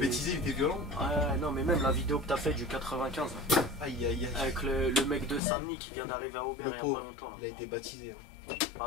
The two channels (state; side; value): drops out; right; at 5.4 s